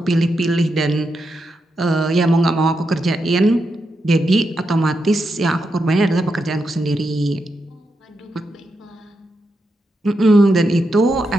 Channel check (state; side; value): normal; both; correlation 0.85